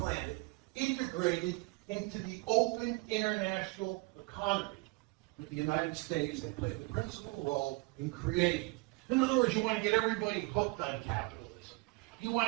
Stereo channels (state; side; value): quieter; left; 25.3 dB